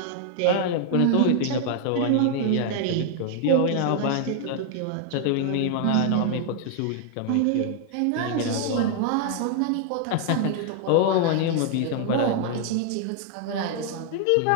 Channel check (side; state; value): both; different; correlation 0.00